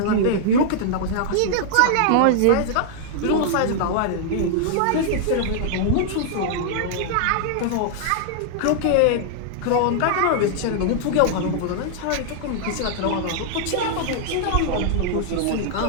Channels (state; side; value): different; both; correlation -0.01